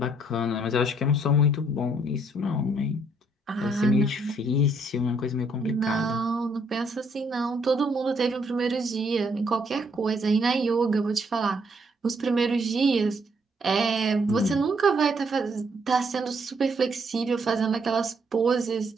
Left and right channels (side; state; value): both; normal; correlation 0.69